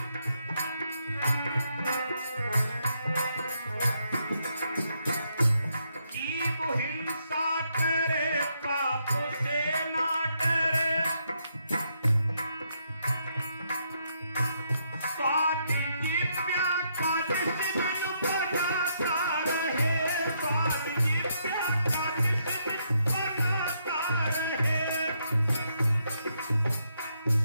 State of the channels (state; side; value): inverted; both; correlation -0.76